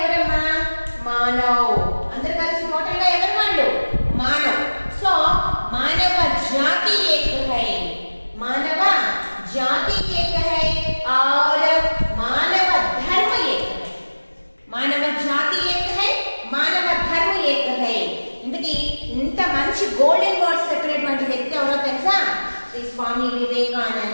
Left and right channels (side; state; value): both; inverted; correlation -1.00